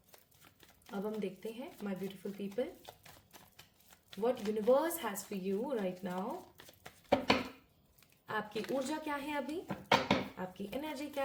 अब हम देखते हैं my beautiful people, what universe has for you right now. आपकी ऊर्जा क्या है अभी, आपकी एनर्जी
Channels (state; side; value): identical; both; correlation 1.00